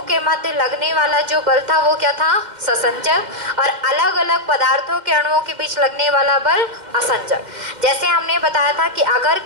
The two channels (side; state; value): left; late; 2.1 ms